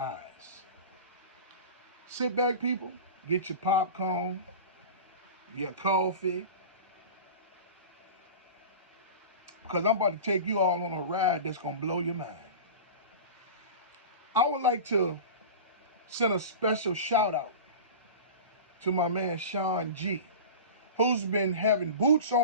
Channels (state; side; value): inverted; both; correlation -0.32